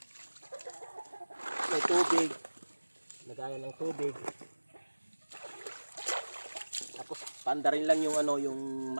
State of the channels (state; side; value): inverted; both; correlation -1.00